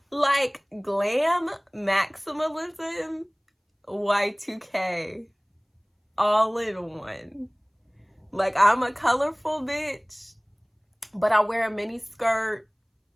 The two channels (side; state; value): both; identical; correlation 1.00